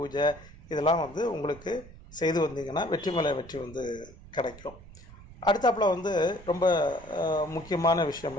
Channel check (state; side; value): noise; right; rumble, 19 dB below the sound